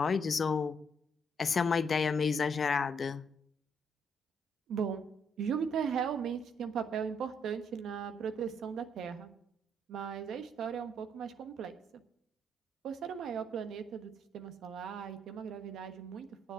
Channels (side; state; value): both; normal; correlation 0.72